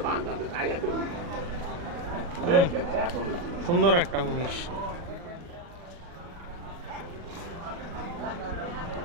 সুন্দর একটা মহিষ।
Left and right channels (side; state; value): left; late; 40 ms